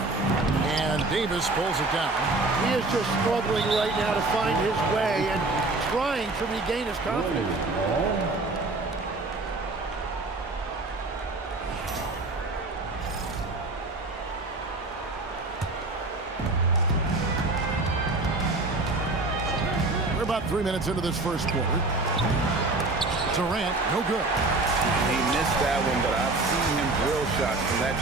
And Davis pulls it down. He is just struggling right now to find his way and trying to regain his confidence. We're about 3 minutes into this first quarter. Durant, no good. He missed that one, but I've seen him drill shots from that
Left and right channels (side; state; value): left; quieter; 3.2 dB